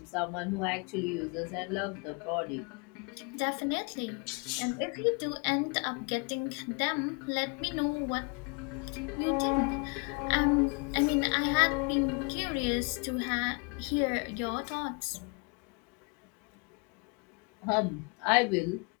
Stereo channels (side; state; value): right; quieter; 33.3 dB